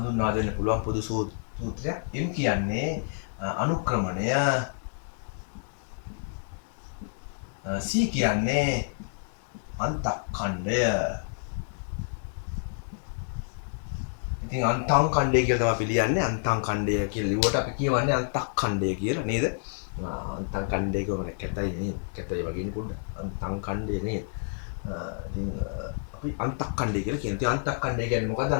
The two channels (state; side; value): silent; right; 59 dB below the other